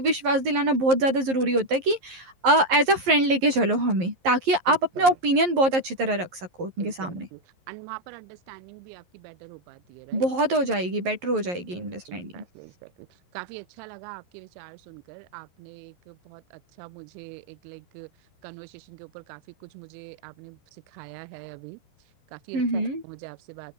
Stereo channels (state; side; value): late; left; 11 ms